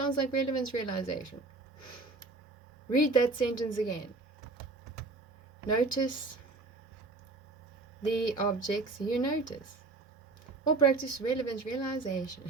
like relevance realization. Read that sentence again. Notice the objects you notice. Or practice relevance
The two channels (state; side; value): quieter; left; 3.6 dB